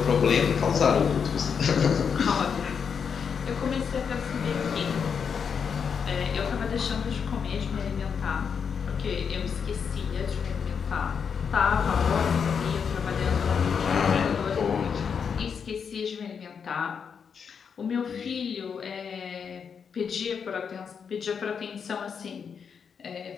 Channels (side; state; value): right; quieter; 6.6 dB